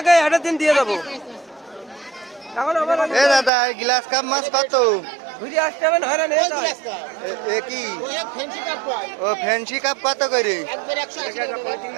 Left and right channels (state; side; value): drops out; left; at 3.5 s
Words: এটা দিন দিয়ে দেবো। এ দাদা গ্লাস কাপ মাছ কত? ঘুরে আসতে হবে হয়রান এ কি ও ফ্যান্সি কাপ কত করে?